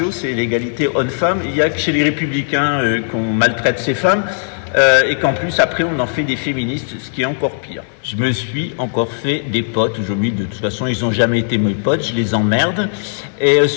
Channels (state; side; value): silent; right; 66 dB below the other